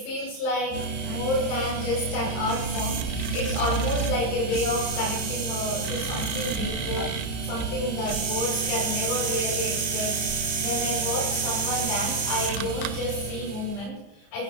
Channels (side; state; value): right; late; 35 ms